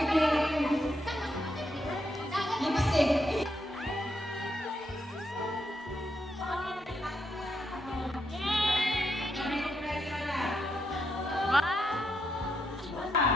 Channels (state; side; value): normal; both; correlation 0.81